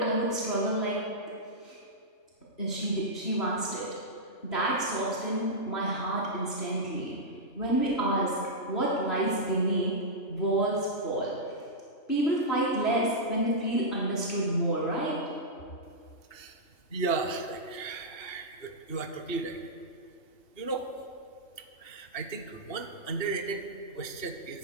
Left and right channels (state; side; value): late; right; 2.8 ms